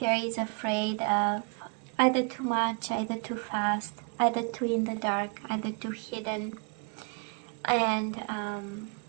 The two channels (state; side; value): quieter; left; 36.0 dB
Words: is afraid of either too much, either too fast, either too in the dark, either too hidden, and